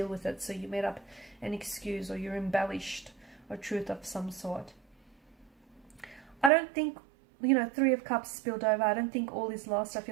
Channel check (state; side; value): drops out; left; at 6.5 s